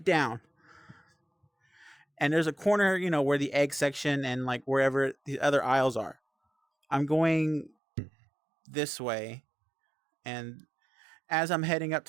down, and there's a corner, where the egg section and like wherever the other aisles are. I'm going this way, and as I'm heading up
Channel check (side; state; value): left; drops out; at 7.8 s